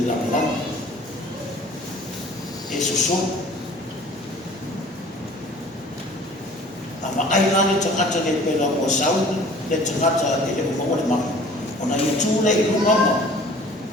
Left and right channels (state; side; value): normal; both; correlation 0.49